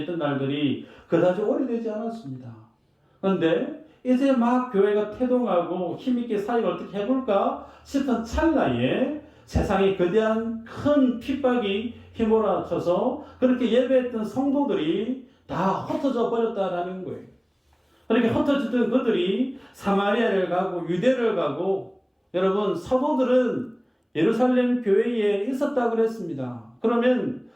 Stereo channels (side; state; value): both; identical; correlation 1.00